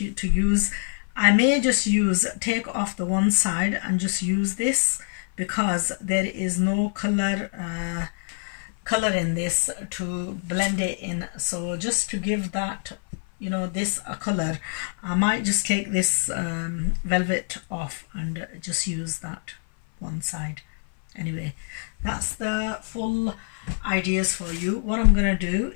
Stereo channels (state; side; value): silent; right; 57 dB below the other